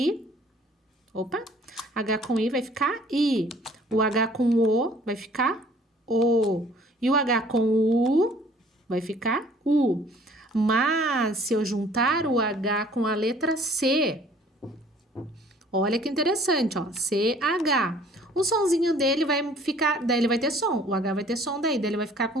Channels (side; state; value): both; normal; correlation 0.55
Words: Opa. H com I vai ficar I. O H com O vai ficar O. E o H com U vai ficar U. Mas, se eu juntar o H com a letra C, olha que interessante, ó. CH. O sonzinho dele vai ficar, daí ele vai ter som. O H vai ter som daí ele vai ficar